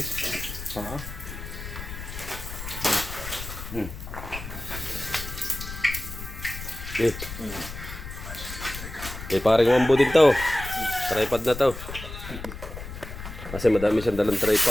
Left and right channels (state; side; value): noise; left; rumble, 10 dB below the sound